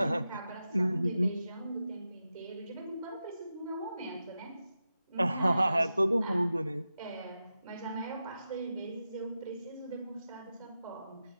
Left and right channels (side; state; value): both; inverted; correlation -0.91